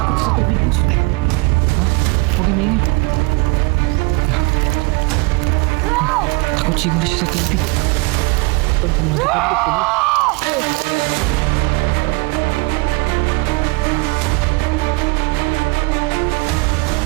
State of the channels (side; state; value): left; quieter; 26.9 dB